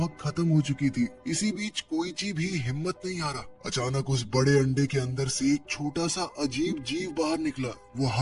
खत्म हो चुकी थी। इसी बीच कोइची भी हिम्मत नहीं हारा। अचानक उस बड़े अंडे के अंदर से एक छोटा सा अजीब जीव बाहर निकला। वो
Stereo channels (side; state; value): both; identical; correlation 1.00